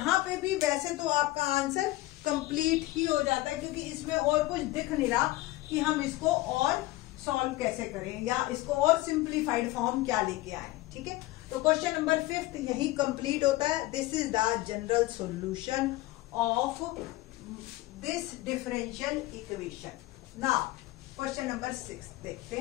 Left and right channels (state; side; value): quieter; right; 18.4 dB